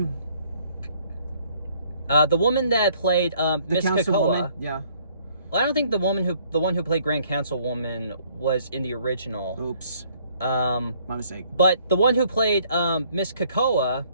it, the woman that played Miss Krakoa. Yeah. Well, I don't think the one who played Grand Councilwoman was in the original. Oops. My mistake. But the one who played Miss Krakoa,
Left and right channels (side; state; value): both; inverted; correlation -0.62